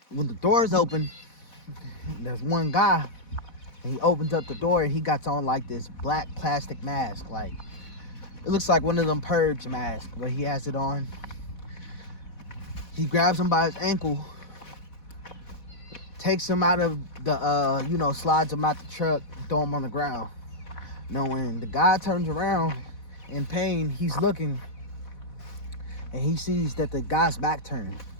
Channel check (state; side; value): late; right; 4.1 ms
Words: When the doors open, there's one guy, and he opens up the door, and he got on like this black plastic mask. Like, it looks like one of them purge masks, but he has it on. He grabs him by his ankle, takes him out of the, slides him out the truck, throw him on the ground. Now, when the guy turns around in pain, he's looking, and he sees that the guy's back turned.